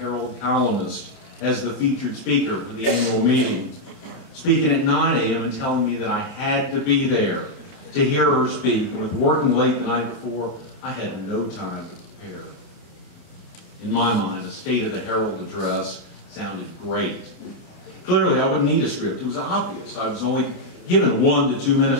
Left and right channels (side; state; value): right; late; 29 ms